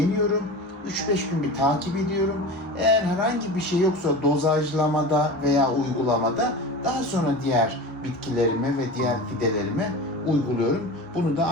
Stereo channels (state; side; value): normal; both; correlation 0.31